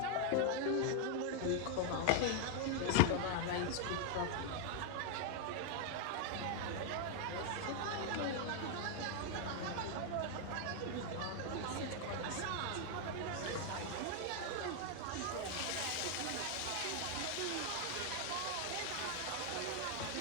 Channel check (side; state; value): both; different; correlation 0.00